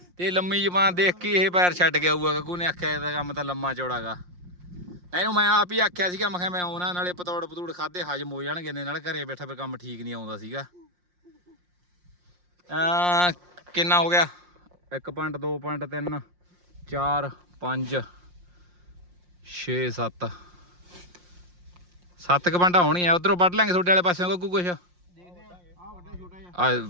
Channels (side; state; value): left; late; 5.6 ms